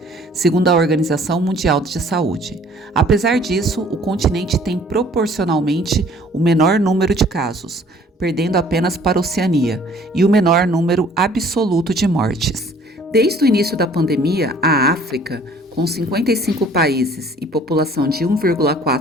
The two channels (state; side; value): normal; both; correlation 0.55